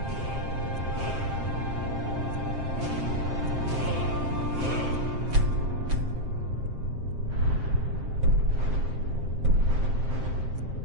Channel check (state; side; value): late; left; 7.6 ms